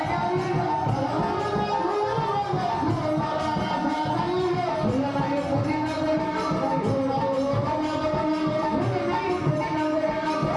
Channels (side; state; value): both; identical; correlation 1.00